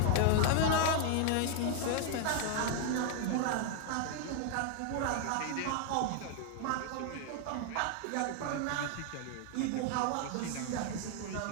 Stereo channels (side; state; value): both; different; correlation 0.00